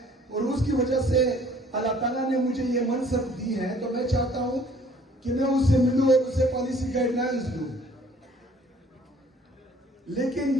اور اس کی وجہ سے اللہ تعالیٰ نے مجھے یہ منصب دی ہے, تو میں چاہتا ہوں کہ میں اس سے ملوں اور اسے پالیسی گائیڈ لائنز دوں. لیکن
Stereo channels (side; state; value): both; normal; correlation 0.56